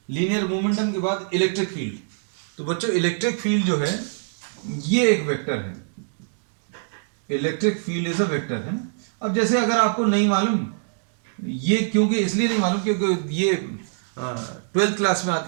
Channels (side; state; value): left; silent; digital silence